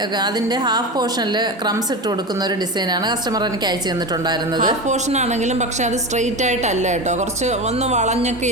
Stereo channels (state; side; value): normal; both; correlation 0.24